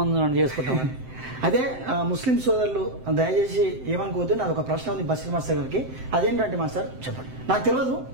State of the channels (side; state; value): left; late; 7.7 ms